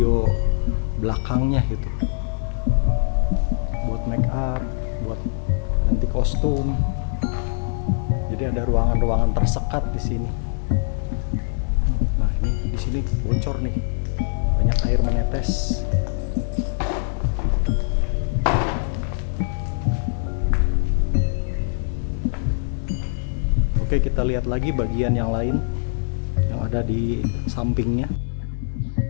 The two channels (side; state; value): right; silent; digital silence